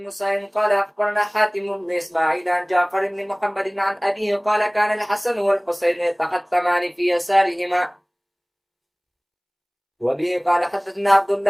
سعيد قال أخبرنا حاتم بن إسماعيل عن جعفر بن محمد عن أبيه قال كان الحسن والحسين يتختمان في يسارهما. وبه قال حدثنا عبد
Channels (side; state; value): both; identical; correlation 1.00